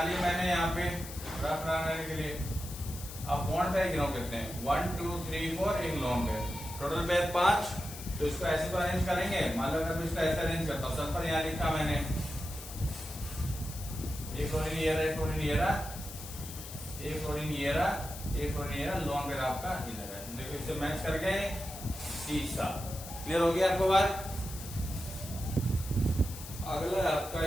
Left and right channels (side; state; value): left; noise; hiss, 12 dB below the sound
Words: लिए मैंने यहाँ पे रफ बनाने के लिए। अब बॉन्ड पेयर गिनो करते हैं, 1 2 3 4, एक लॉन्ग पेयर, टोटल पेयर 5। तो इसको ऐसे तो अरेंज करेंगे। मान लो अगर मैं इसको ऐसे अरेंज करता हूँ, सल्फर यहाँ लिखा मैंने, एक फ्लोरीन ये रहा, एक फ्लोरीन ये रहा, एक फ्लोरीन ये रहा, एक फ्लोरीन ये रहा, लॉन्ग पेयर आपका ये लगा है। देखो इससे मैच कर गए सीसा। क्लियर हो गया आपको बात? अगला आपका